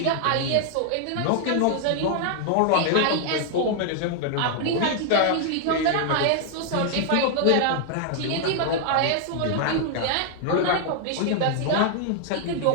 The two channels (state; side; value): different; both; correlation 0.00